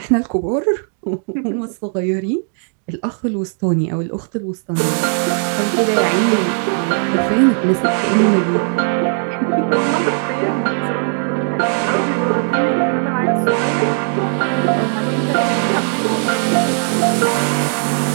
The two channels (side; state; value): left; silent; 55 dB below the other